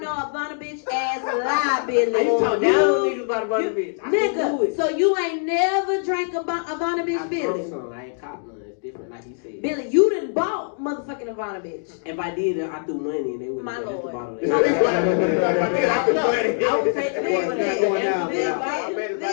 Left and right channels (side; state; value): right; silent; digital silence